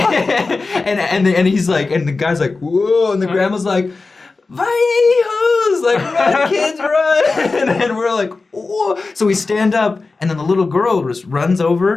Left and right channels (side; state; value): right; quieter; 3.9 dB